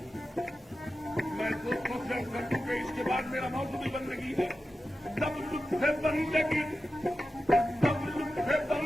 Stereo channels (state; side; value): normal; both; correlation 0.92